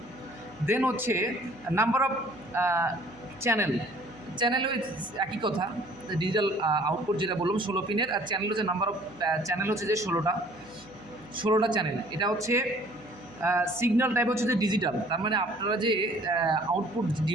দেন হচ্ছে নাম্বার অফ চ্যানেলও একই কথা, ডিজিটাল আউটপুট যেটা বললাম 16 পিনের, আর চ্যানেল হচ্ছে নাম্বার অফ চ্যানেল হচ্ছে যে 16টা চ্যানেল। এটা হচ্ছে সিগন্যাল টাইপ হচ্ছে যে ডিজিটাল, তার মানে আপনারা যে আউটপুট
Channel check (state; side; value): noise; right; hum, 24 dB below the sound